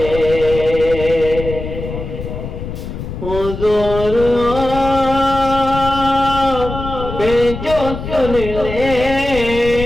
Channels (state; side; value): noise; left; rumble, 8 dB below the sound